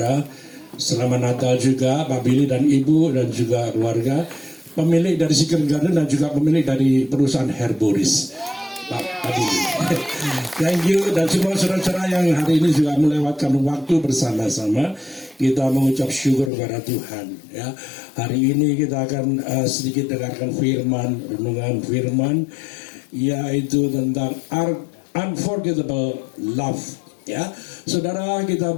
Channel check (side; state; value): right; drops out; at 16.5 s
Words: Selamat Natal juga Pak Billy dan Ibu dan juga keluarga. Pemilik dari Secret Garden dan juga pemilik dari perusahaan Herboris. Pak Billy. Thank you dan semua saudara-saudara yang hari ini juga melewatkan waktu bersama-sama. Kita mengucap syukur kepada Tuhan. Ya, hari ini kita akan sedikit dengarkan firman, renungan firman, yaitu tentang unforgettable love. Ya, saudara, kita